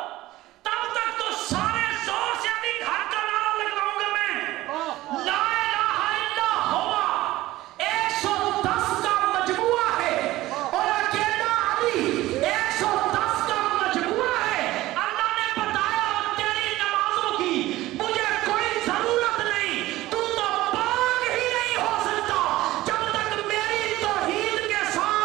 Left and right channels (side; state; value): left; quieter; 16.9 dB